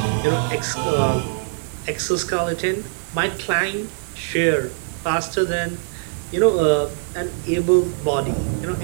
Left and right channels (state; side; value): silent; left; 64 dB below the other